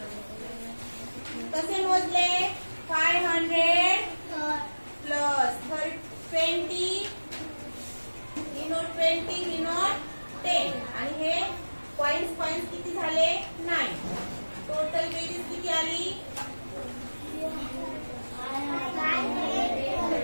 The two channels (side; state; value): both; inverted; correlation -1.00